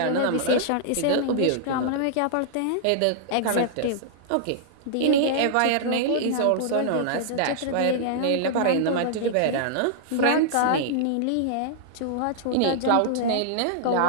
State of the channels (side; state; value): both; different; correlation -0.01